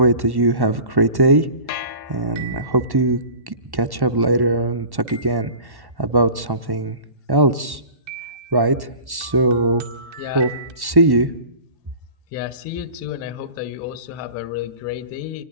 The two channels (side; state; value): left; late; 1.1 ms